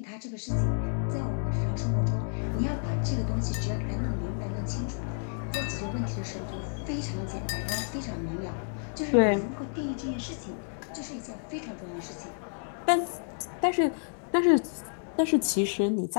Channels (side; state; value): right; silent; 58 dB below the other